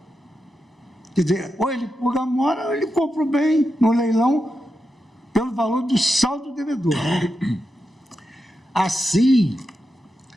Quer dizer, ou ele purga a mora, ou ele compra o bem no leilão pelo valor do saldo devedor. Assim,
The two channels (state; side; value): normal; both; correlation 0.88